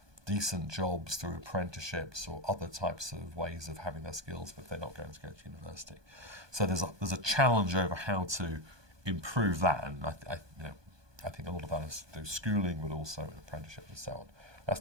decent jobs through apprenticeships or other types of ways of having their skills, but they're not going to go to university. So there's a challenge over how to improve that, and I think a lot of that is through schooling, but also in apprenticeship and so on.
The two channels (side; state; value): left; late; 1.2 ms